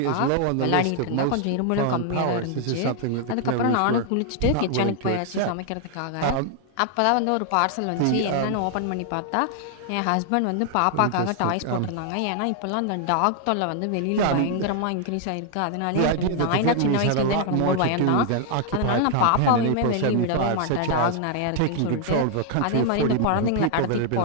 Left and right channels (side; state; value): both; different; correlation 0.00